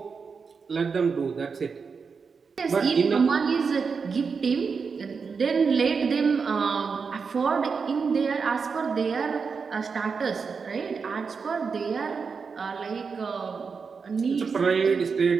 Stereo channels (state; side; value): quieter; left; 5.4 dB